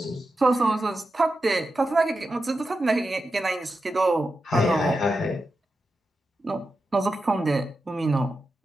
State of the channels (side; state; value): both; normal; correlation 0.90